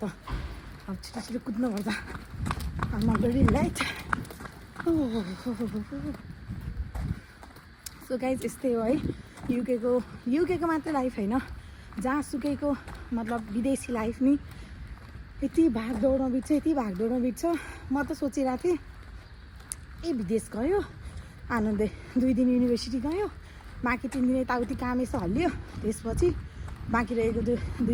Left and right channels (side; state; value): both; identical; correlation 1.00